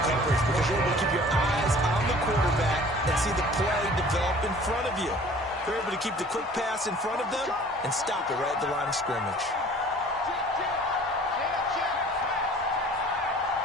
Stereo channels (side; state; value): both; normal; correlation 0.49